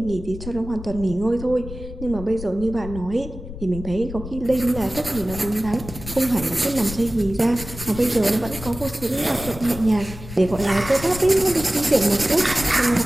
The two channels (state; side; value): noise; left; rumble, 12 dB below the sound